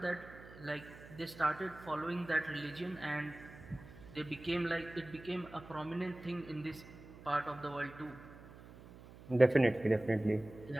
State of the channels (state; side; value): noise; right; hum, 18 dB below the sound